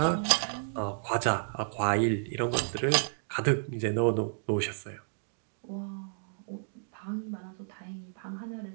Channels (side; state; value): left; silent; digital silence